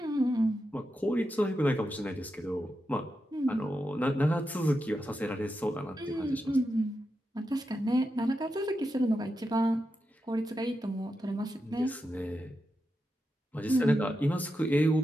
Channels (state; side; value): normal; both; correlation 0.88